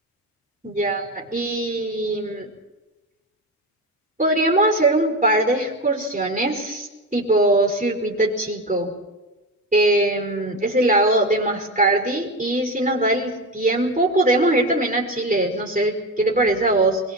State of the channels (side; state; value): both; normal; correlation 0.20